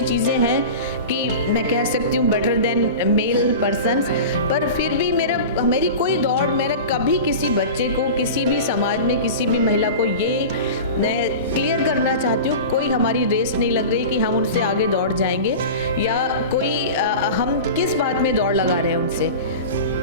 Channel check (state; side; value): inverted; both; correlation -0.31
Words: चीज़ें हैं कि मैं कह सकती हूँ बेटर देन मेल पर्सन्स, पर फिर भी मेरी कोई दौड़, मेरा कभी किसी बच्चे को, किसी भी समाज में किसी भी महिला को ये मैं क्लियर करना चाहती हूँ, कोई हमारी रेस नहीं लग रही कि हम उनसे आगे दौड़ जाएंगे या कोई हम किस बात में दौड़ लगा रहे हैं उनसे।